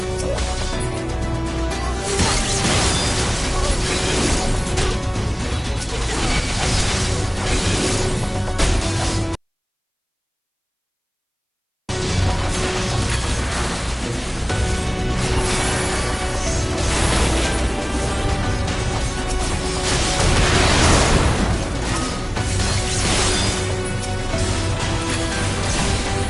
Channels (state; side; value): identical; both; correlation 1.00